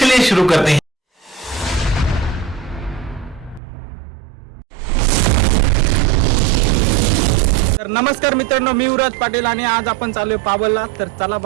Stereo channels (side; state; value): left; drops out; at 3.6 s